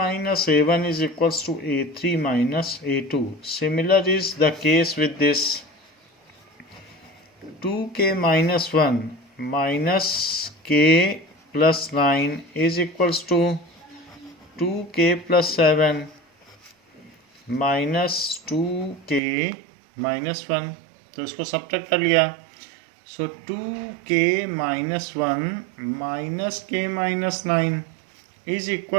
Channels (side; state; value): left; drops out; at 19.2 s